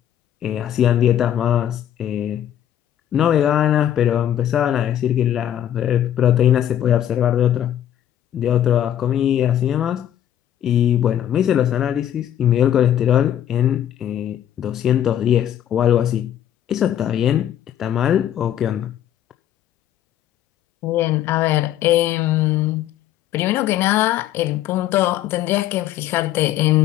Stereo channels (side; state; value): right; quieter; 11.1 dB